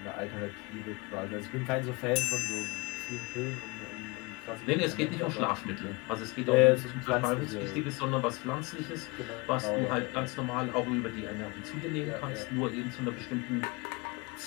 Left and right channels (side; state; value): right; quieter; 26.2 dB